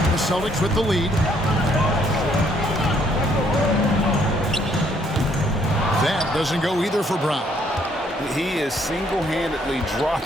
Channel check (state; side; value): normal; both; correlation 0.67